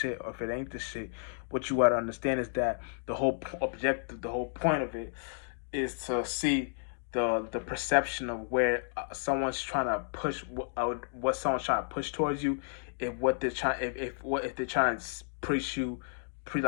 or if it ain't the shit. What you got to understand is that the whole objective, the whole point of it is to see the perception of where someone's trying to push what someone's trying to push towards you. If what they're trying if they're trying to preach you,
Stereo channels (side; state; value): right; silent; digital silence